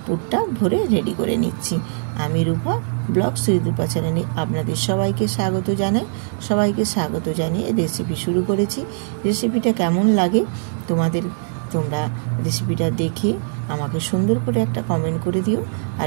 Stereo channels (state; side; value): silent; left; digital silence